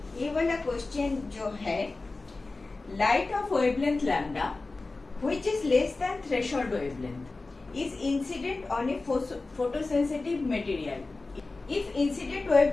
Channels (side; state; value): right; quieter; 3.5 dB